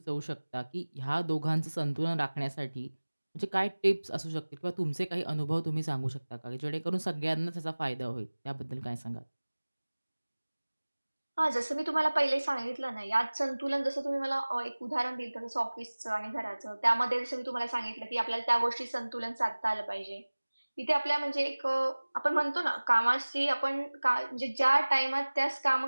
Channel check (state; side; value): inverted; both; correlation -1.00